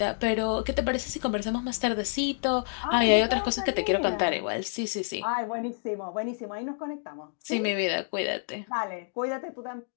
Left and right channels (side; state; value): right; silent; digital silence